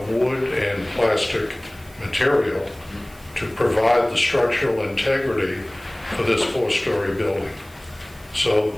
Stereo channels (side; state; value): right; noise; hiss, 25 dB below the sound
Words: wood and plastic material to provide the structural integrity for this 4-story building. So